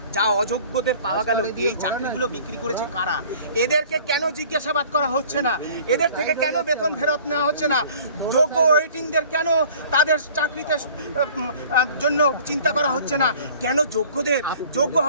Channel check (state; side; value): inverted; both; correlation -0.49